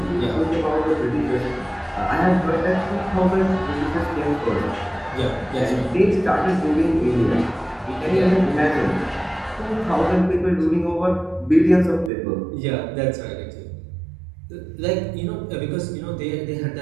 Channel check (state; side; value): drops out; left; at 12.1 s